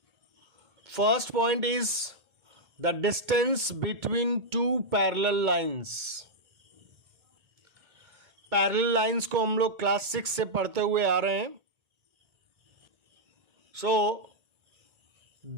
First point is the distance between two parallel lines. Parallel lines को हम लोग class 6 से पढ़ते हुए आ रहे हैं।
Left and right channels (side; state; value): left; late; 2.2 ms